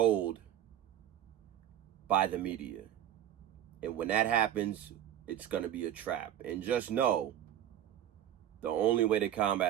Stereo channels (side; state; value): left; quieter; 11.2 dB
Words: by the media. And when that happens, it's going to be a trap. And just know, the only way to